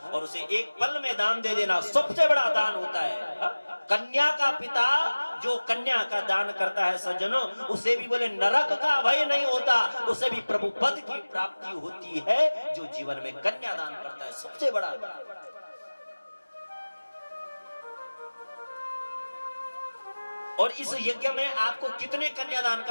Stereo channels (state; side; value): inverted; both; correlation -1.00